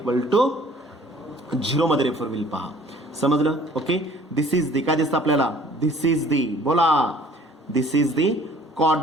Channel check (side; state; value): both; normal; correlation 0.53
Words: to 0 मध्ये रेफर होईल पहा. समजलं. ओके दिस इज दी काय दिसतं आपल्याला दिस इज दी बोला this is the